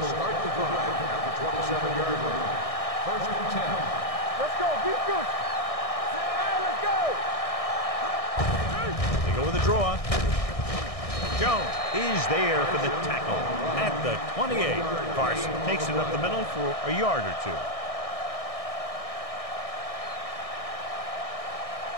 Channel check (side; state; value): right; late; 1.6 ms